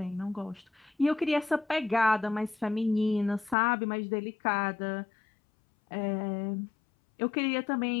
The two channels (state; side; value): drops out; right; at 3.6 s